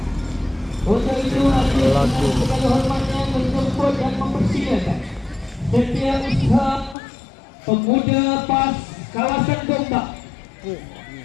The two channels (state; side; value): drops out; right; at 7.0 s